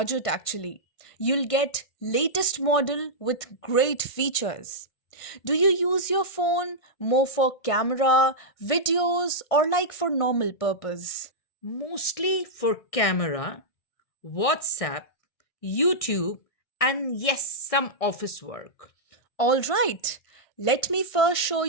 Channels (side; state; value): right; late; 1.6 ms